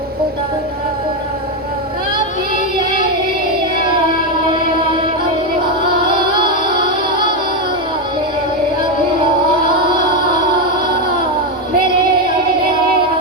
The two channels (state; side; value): normal; both; correlation 0.07